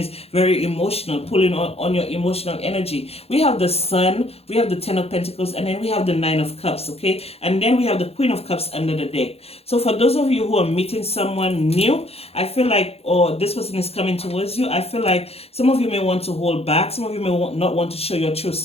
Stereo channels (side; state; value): right; late; 0.29 ms